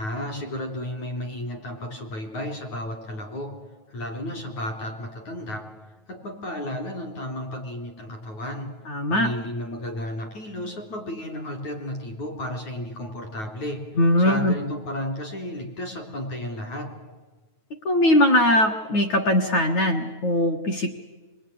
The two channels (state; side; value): late; right; 9.3 ms